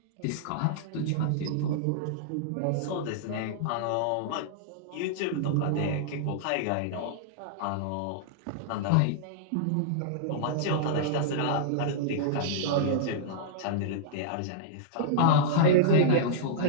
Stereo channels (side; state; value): both; different; correlation -0.02